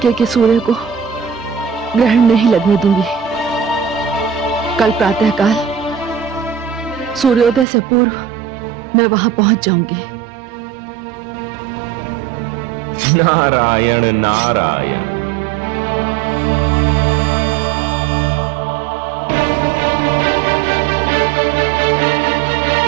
के सूर्य को ग्रहण नहीं लगने दूंगी। कल प्रातःकाल सूर्योदय से पूर्व मैं वहां पहुंच जाऊंगी। नारायण नारायण।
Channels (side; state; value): left; drops out; at 7.7 s